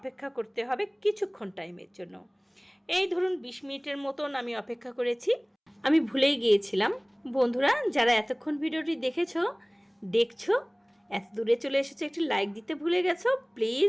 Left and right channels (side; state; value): both; identical; correlation 1.00